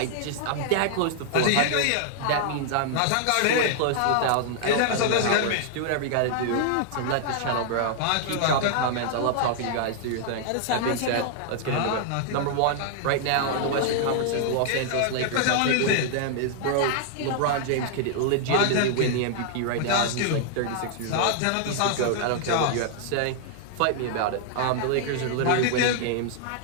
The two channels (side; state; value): both; different; correlation -0.01